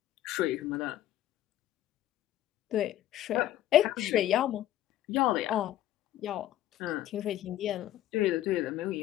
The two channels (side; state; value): right; quieter; 13.1 dB